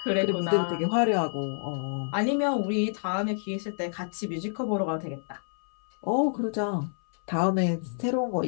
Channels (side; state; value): right; silent; 59 dB below the other